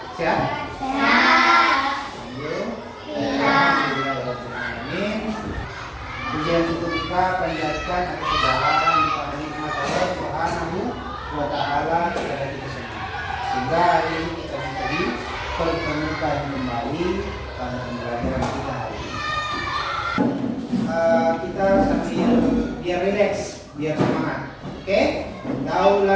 Sehat? Sehat. Amin. Pujian untuk kita panjatkan atas segala nikmat Allah Subhanahu wa Ta'ala kepada kita semua. Sehingga hari ini kita bisa dipertemukan kembali pada pembelajaran kita hari ini. Kita sambil biar rileks, biar semangat. Oke? Tahu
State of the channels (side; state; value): both; identical; correlation 1.00